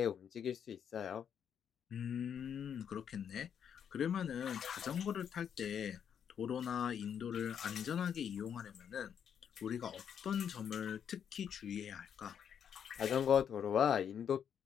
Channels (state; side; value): quieter; right; 8.2 dB